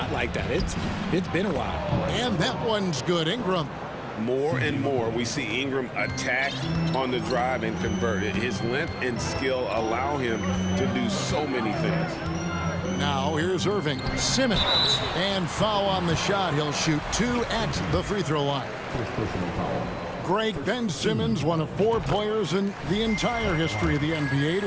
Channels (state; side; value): identical; both; correlation 1.00